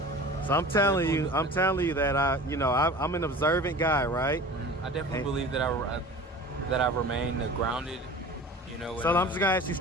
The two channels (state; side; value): normal; both; correlation 0.39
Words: I'm telling you that I'm an observant guy, right? I definitely believe that I remain grounded, you know. So I'm just gonna ask you